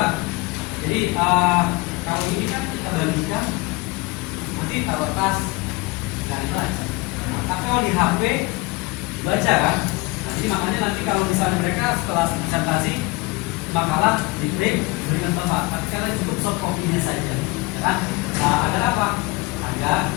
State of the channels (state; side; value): quieter; right; 23.5 dB